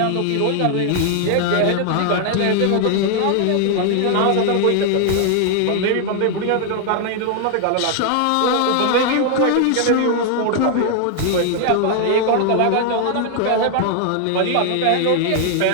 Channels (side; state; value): both; different; correlation 0.00